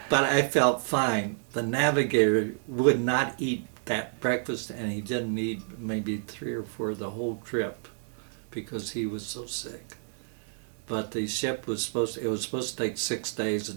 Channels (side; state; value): left; silent; digital silence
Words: But I felt fine. The navigator would not eat that breakfast, and he didn't eat maybe 3 or 4 the whole trip because he was so sick. But the ship was supposed to take 6 days.